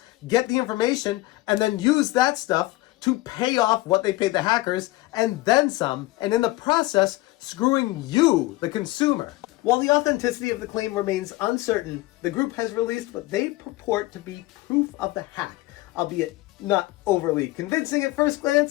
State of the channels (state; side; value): quieter; right; 19.2 dB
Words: get the information, and then use that stuff to pay off what they paid the hackers and then some, and in the process, screwing you, the consumer. While the authenticity of the claim remains uncertain, the group has released what they purport to be proof of the hack, albeit not overly convincing at first